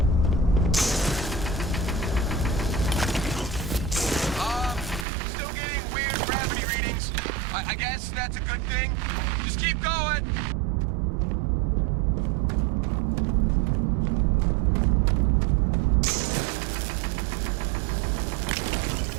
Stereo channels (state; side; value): drops out; left; at 5.1 s